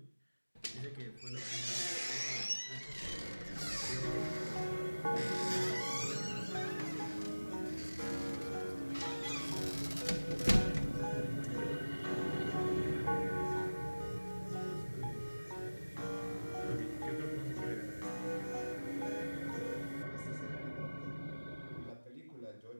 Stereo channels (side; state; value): both; inverted; correlation -1.00